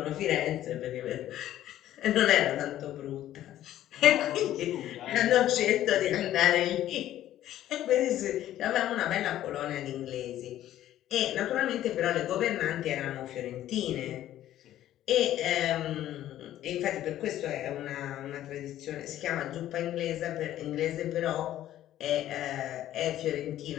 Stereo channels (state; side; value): quieter; right; 12.8 dB